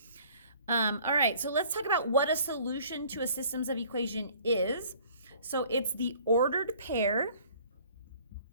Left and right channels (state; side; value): inverted; both; correlation -0.54